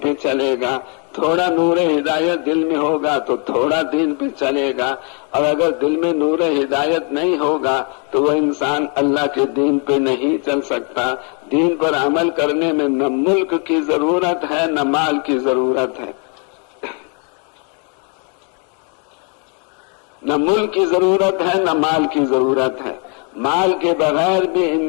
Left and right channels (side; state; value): right; quieter; 37.2 dB